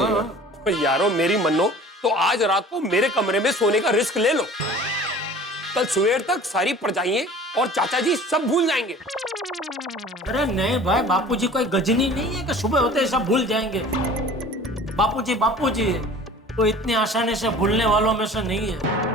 ओ यारो, मेरी मन्नो, तो आज रात को मेरे कमरे में सोने का रिस्क ले लो। कल सवेर तक सारी परजाइयां और चाचा जी सब भूल जाएंगे। अरे नहीं भाई, बापूजी कोई गजनी नहीं है कि सुबह होते ही सब भूल जाएंगे। बापूजी बापूजी है, तो इतनी आसानी से भूलने वालों में से नहीं है।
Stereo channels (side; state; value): both; normal; correlation 0.45